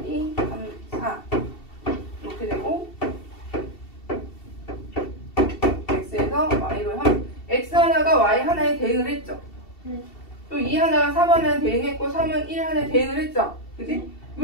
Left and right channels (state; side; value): late; right; 2.7 ms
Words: 2, 3, 4 이렇게 되고 x에서 y로 x 하나가 y 하나에 대응을 했죠. 또 2 하나가 3 하나에 대응했고 3은 1 하나에 대응을 했죠. 그지?